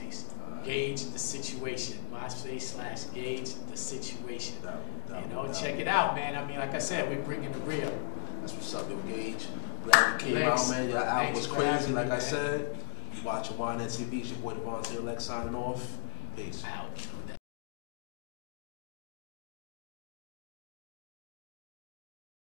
Gauge the Situation. MySpace/Gauge the Situation. Check it out, man. I mean, like I said, we're bringing the real. That's what's up, yo, Gauge. Glad you came out, man. Your album was crazy, like I said. You watching YNN TV. It's your boy Devontae Lex signing off. Peace. Out.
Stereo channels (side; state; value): right; silent; 54 dB below the other